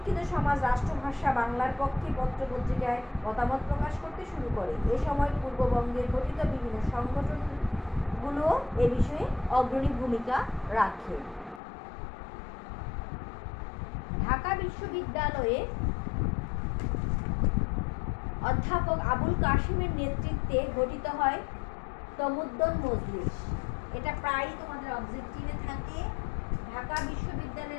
সমাজ রাষ্ট্রভাষা বাংলার পক্ষে পত্রপত্রিকায় মতামত প্রকাশ করতে শুরু করে। এ সময় পূর্ববঙ্গে গঠিত বিভিন্ন সংগঠনগুলো এ বিষয়ে অগ্রণী ভূমিকা রাখে। ঢাকা বিশ্ববিদ্যালয়ে অধ্যাপক আবুল কাশিমের নেতৃত্বে গঠিত হয় তমুদ্দুন মজলিস। এটা প্রায়ই তোমাদের অবজেক্টিভে থাকে। ঢাকা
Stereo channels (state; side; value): drops out; right; at 11.6 s